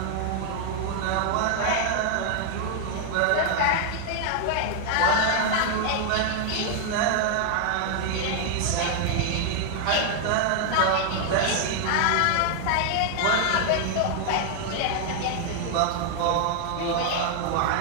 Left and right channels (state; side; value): different; both; correlation 0.00